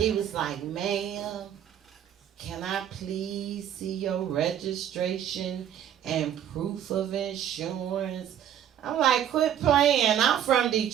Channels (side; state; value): left; quieter; 9.9 dB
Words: was like, ma'am, can I please see your registration and proof of insurance? I'm like, quit playing. I'm from